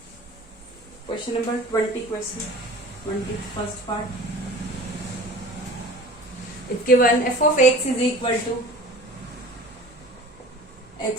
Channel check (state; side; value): normal; both; correlation 0.42